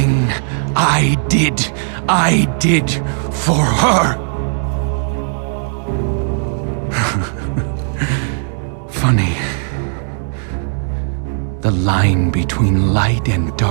I did for her. Funny. The line between light and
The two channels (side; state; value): left; silent; digital silence